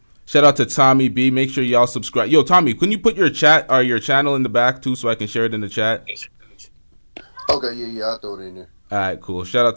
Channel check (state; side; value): inverted; both; correlation -1.00